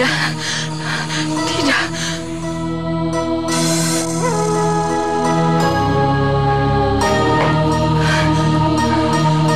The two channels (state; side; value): identical; both; correlation 1.00